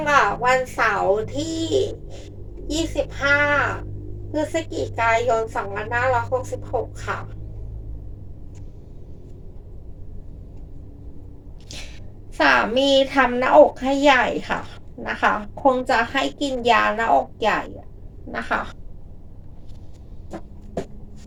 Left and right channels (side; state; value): both; identical; correlation 1.00